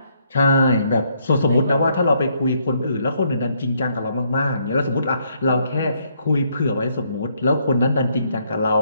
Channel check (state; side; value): inverted; both; correlation -0.71